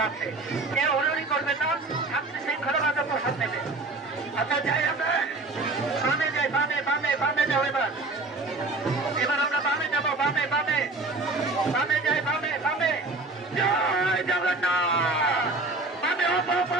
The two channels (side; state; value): left; quieter; 3.2 dB